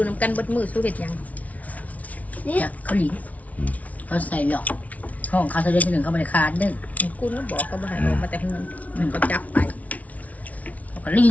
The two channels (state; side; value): late; right; 0.070 ms